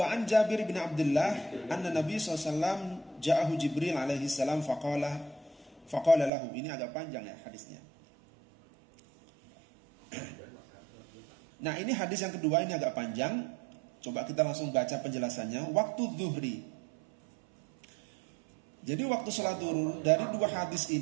an Jabir bin Abdullah anna Nabi SAW ja'ahu Jibril alaihi salam faqala lahu. Ini agak panjang, ya, hadisnya. Nah, ini hadis yang kedua, ini agak panjang. Coba kita langsung baca penjelasannya. Waktu zuhri. Jadi waktu sholat zuhur dari dua hadis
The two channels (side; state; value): left; drops out; at 6.3 s